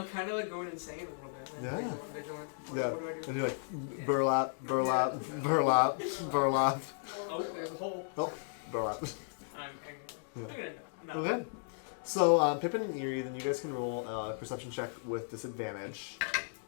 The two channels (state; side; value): silent; right; digital silence